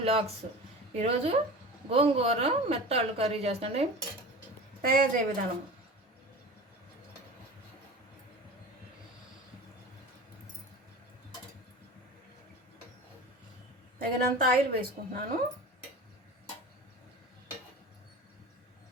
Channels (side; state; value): both; normal; correlation 0.35